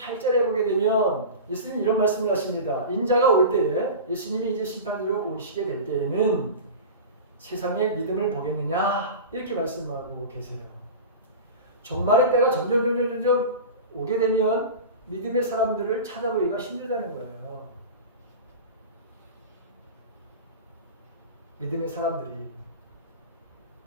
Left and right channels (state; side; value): inverted; both; correlation -0.31